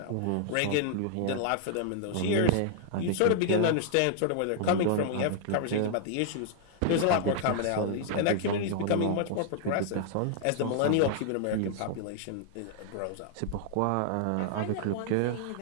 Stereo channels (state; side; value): different; both; correlation -0.01